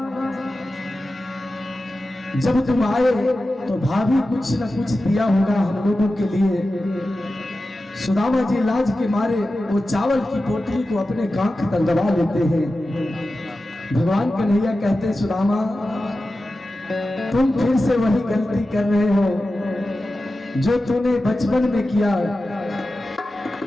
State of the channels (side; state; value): both; normal; correlation 0.93